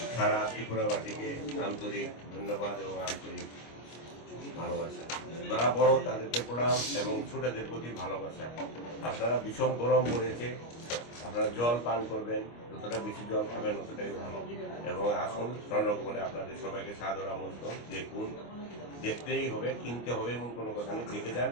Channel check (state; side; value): late; right; 25 ms